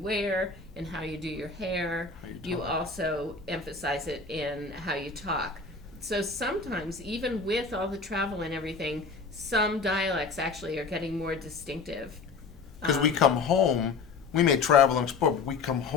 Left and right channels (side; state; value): right; quieter; 4.6 dB